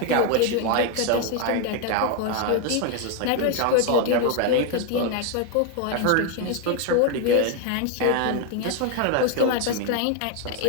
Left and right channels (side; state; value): both; different; correlation 0.01